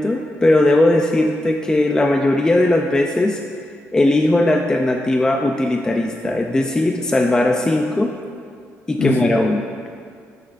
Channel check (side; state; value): both; normal; correlation 0.89